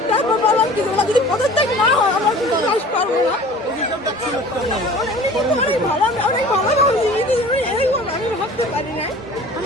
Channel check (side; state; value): both; normal; correlation 0.44